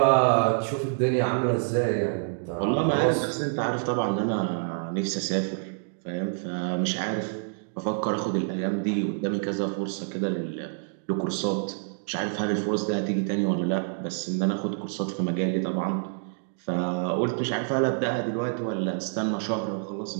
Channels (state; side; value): silent; left; digital silence